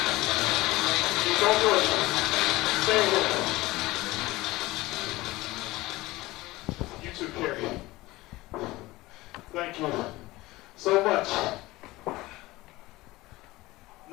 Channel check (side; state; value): right; quieter; 19.5 dB